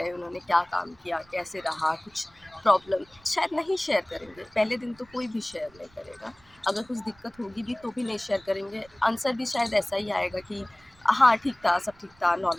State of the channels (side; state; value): right; noise; rumble, 28 dB below the sound